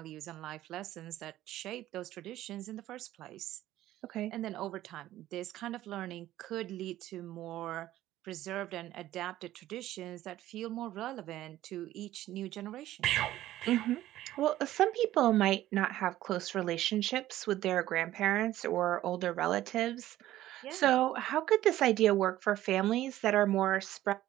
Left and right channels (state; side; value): quieter; left; 14.3 dB